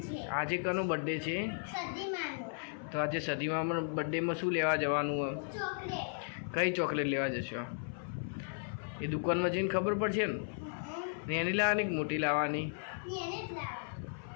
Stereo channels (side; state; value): right; silent; 54 dB below the other